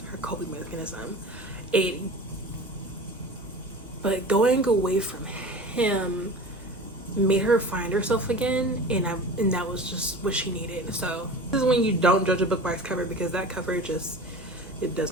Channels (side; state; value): both; normal; correlation 0.36